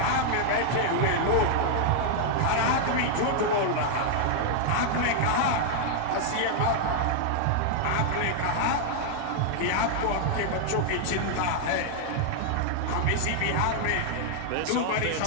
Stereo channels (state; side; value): different; both; correlation -0.01